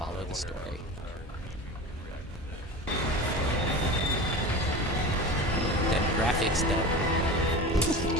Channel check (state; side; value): normal; both; correlation 0.31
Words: the story. Then graphics done.